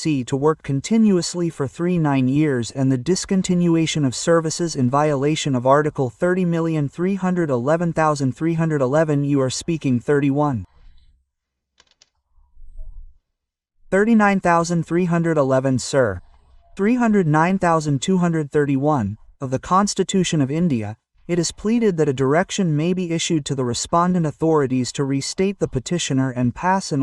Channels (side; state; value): both; identical; correlation 1.00